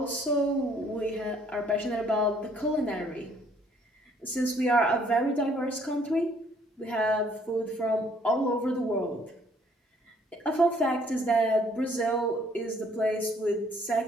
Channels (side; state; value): both; normal; correlation 0.63